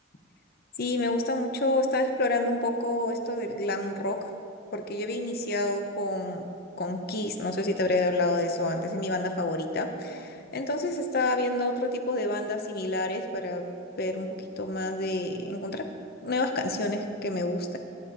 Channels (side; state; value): both; normal; correlation 0.08